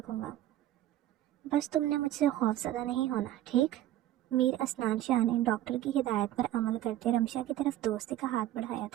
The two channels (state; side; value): quieter; left; 13.3 dB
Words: گا، بس تم نے مجھ سے خوف زدہ نہیں ہونا، ٹھیک؟ میر اسنان شاہ نے ڈاکٹر کی ہدایت پر عمل کرتے رمشا کی طرف دوستی کا ہاتھ بڑھایا